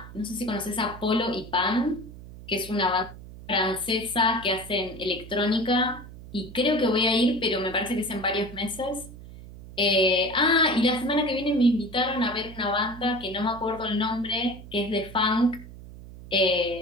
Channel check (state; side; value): noise; right; hum, 16 dB below the sound